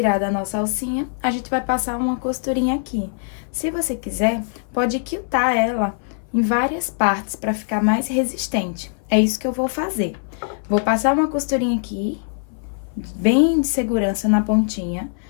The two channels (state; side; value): silent; right; 58 dB below the other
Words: a nossa alcinha, a gente vai passar uma costurinha aqui. Se você quiser, pode quiltar ela em várias partes para ficar mais resistente. É isso que eu vou fazer. Vou passar uma costurinha aqui, bem de segurança na pontinha,